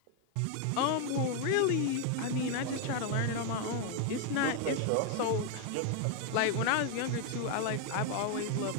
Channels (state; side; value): different; both; correlation 0.01